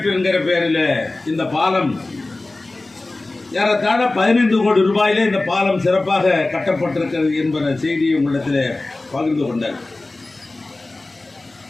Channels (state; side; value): quieter; right; 3.0 dB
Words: என்கிற பெயரில் இந்த பாலம் ஏறத்தாழ 15 கோடி ரூபாயிலே இந்த பாலம் சிறப்பாக கட்டப்பட்டிருக்கிறது என்பத செய்தியை உங்களிடத்தில் பகிர்ந்து கொண்டார்.